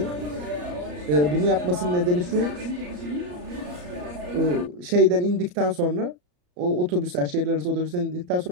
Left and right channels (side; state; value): left; late; 34 ms